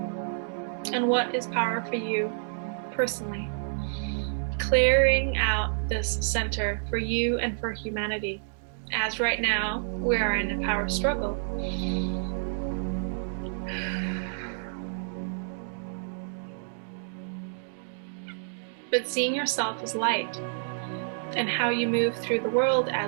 and what is power for you personally. Clearing out this center for you and for humanity, as right now we are in a power struggle. But seeing yourself as light and how you move through the world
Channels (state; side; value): silent; left; digital silence